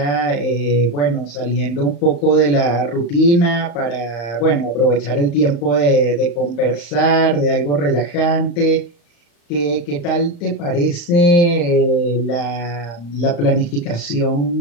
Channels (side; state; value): right; late; 35 ms